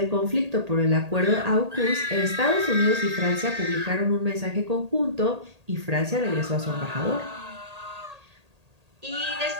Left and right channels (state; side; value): late; left; 1.8 ms